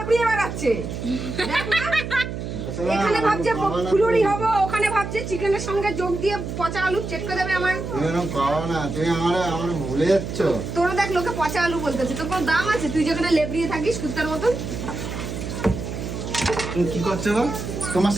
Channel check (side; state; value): right; noise; hum, 6 dB below the sound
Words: বেড়াচ্ছে। দেখ না? এখানে ভাবছে ফুলুরি হবো, ওখানে ভাবছে চিকেনের সঙ্গে যোগ দিয়ে পচা আলু চেটকে দেবে আমার। তুমি এরকম করো না, তুমি আমার ভুলে যাচ্ছ। তোরা দেখ লোকে পচা আলু বলতেছে, তোর কোনো দাম আছে? তুই যেখানে লেবড়িয়ে থাকিস কুত্তার মতন। তুমি কি করছো গো? তোমার